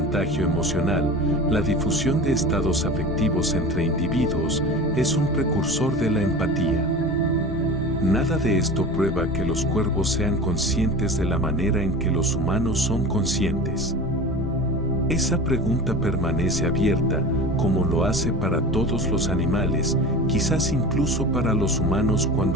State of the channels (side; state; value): both; normal; correlation 0.33